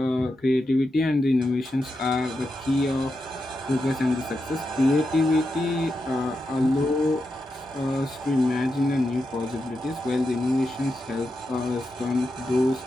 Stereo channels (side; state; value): both; normal; correlation 0.87